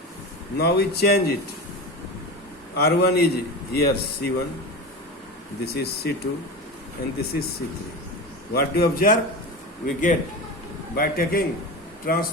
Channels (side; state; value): both; normal; correlation 0.26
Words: Now we change it. R1 is here C1, this is C2 and this is C3. What do you observe? We get, by taking